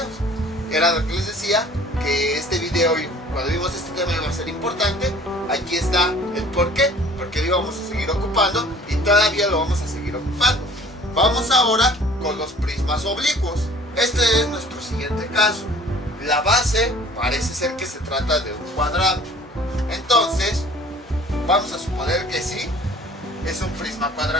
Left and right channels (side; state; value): both; normal; correlation 0.50